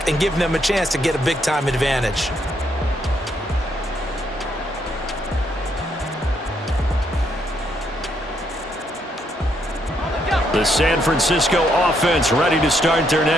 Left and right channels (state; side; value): normal; both; correlation 0.74